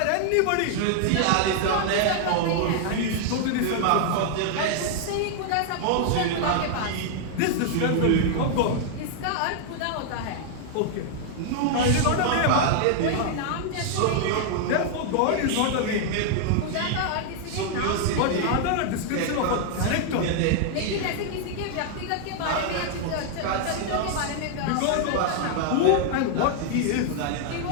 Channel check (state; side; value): different; both; correlation 0.00